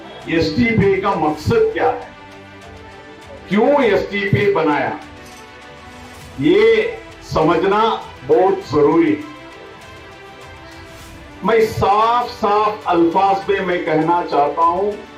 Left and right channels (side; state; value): both; identical; correlation 1.00